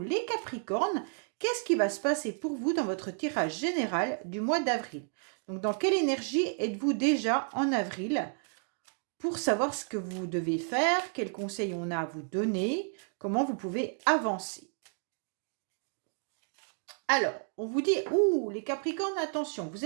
Capricornes. Qu'est-ce qui va se passer pour vous dans votre tirage général du mois d'avril? Donc dans quelle énergie êtes-vous déjà en avril pour savoir ce que vous devez faire, quels conseils on a à vous donner, comment vous pouvez avancer. Alors, on vous dit, les Capricornes, attention, vous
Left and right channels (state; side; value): silent; left; 57 dB below the other